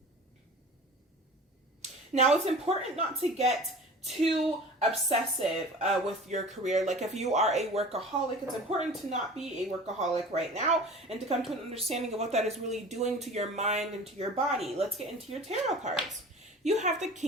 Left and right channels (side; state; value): both; normal; correlation 0.40